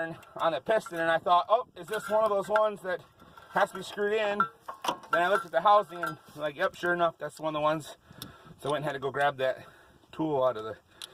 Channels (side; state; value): both; identical; correlation 1.00